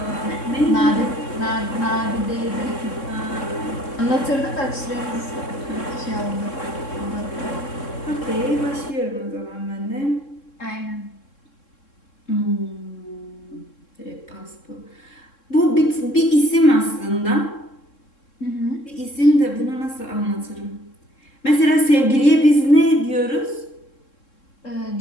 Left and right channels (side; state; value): right; late; 3.7 ms